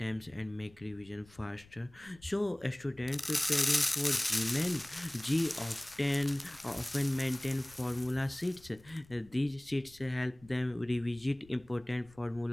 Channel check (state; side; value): noise; left; rumble, 25 dB below the sound